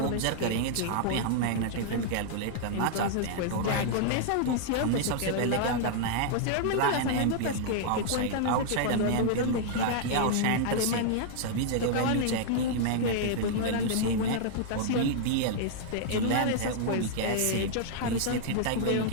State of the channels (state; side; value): different; both; correlation -0.01